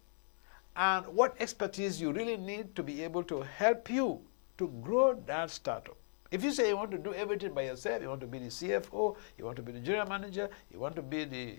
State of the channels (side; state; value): right; silent; digital silence